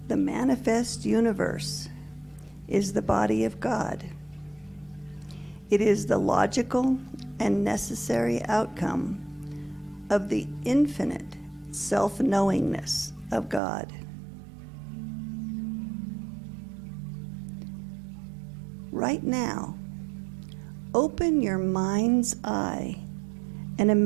The manifest universe is the body of God. It is the logical and necessary outcome of the infinite self-knowingness of God. Right now, open your mind's eye and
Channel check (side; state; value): left; drops out; at 13.6 s